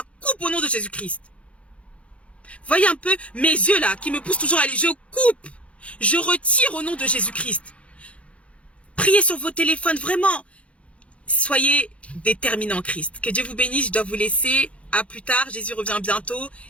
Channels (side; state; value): right; late; 0.062 ms